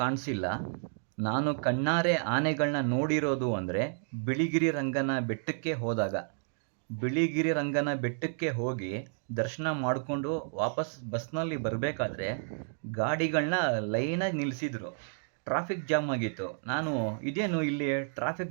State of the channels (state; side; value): silent; left; digital silence